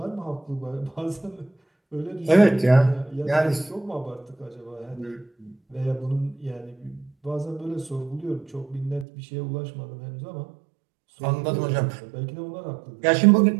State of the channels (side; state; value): left; drops out; at 9.1 s